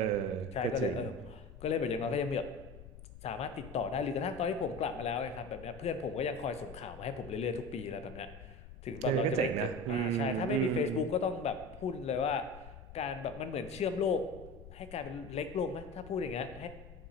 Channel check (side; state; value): left; noise; rumble, 16 dB below the sound